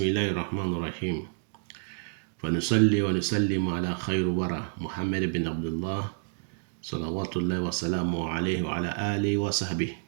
الله الرحمن الرحيم. فنصلي ونسلم على خير ورى محمد بن عبد الله صلوات الله وسلامه عليه وعلى آله وصحبه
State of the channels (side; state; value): left; silent; digital silence